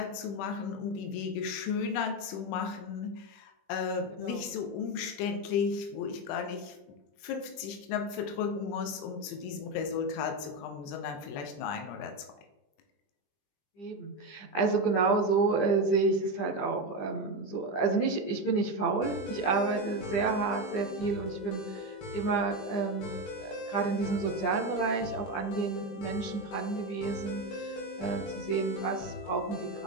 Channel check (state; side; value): late; right; 21 ms